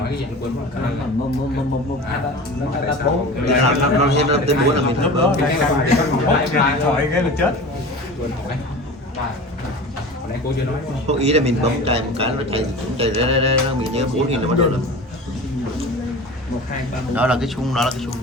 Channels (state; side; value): normal; both; correlation 0.35